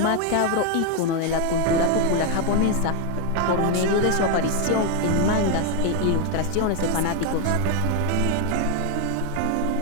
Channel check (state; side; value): different; both; correlation 0.01